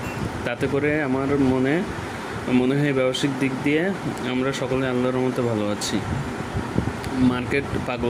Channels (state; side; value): identical; both; correlation 1.00